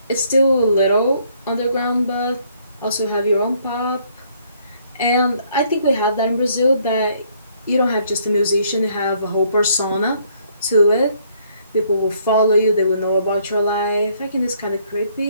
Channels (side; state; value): both; inverted; correlation -0.66